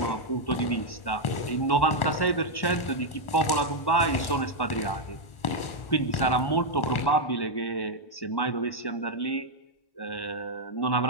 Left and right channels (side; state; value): right; late; 1.4 ms